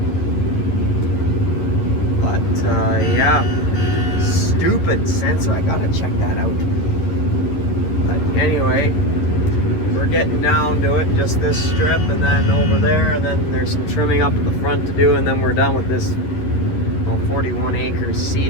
but yeah, stupid sensor. I gotta check that out. But anyway, we're getting down to it. Just this strip, and then over there, and then there's some trimming up at the front to do, and then we're done with this 41 acres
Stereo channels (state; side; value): late; right; 11 ms